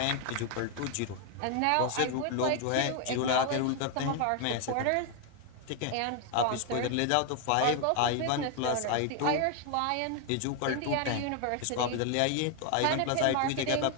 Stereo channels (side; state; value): both; different; correlation 0.01